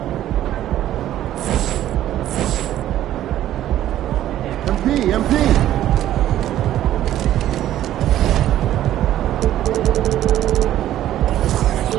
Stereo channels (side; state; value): left; quieter; 12.7 dB